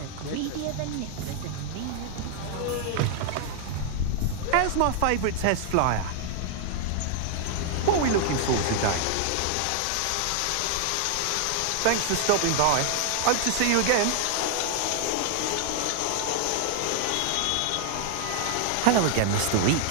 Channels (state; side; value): different; both; correlation 0.00